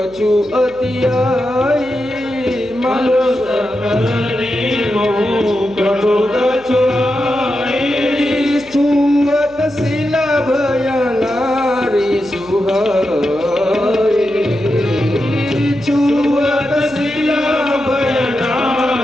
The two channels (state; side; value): noise; left; hum, 26 dB below the sound